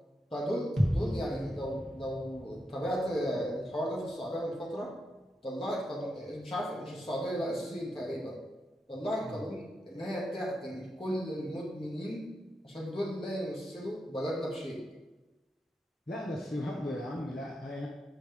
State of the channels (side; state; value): both; normal; correlation 0.85